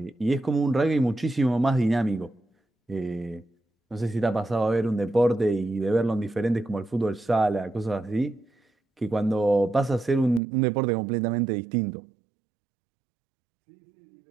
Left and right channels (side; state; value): left; drops out; at 10.4 s